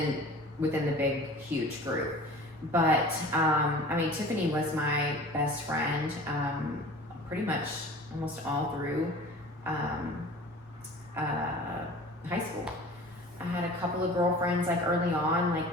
the big, huge group. But I mean, Tiffany was my best friend pretty much almost all through high school. I had a couple of girlfriends like early on, like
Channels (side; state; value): both; normal; correlation 0.42